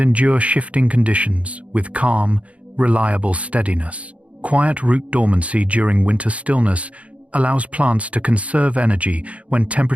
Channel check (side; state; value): left; late; 0.064 ms